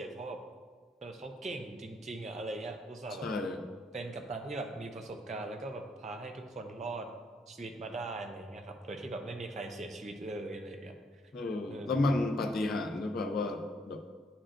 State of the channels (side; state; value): both; normal; correlation 0.71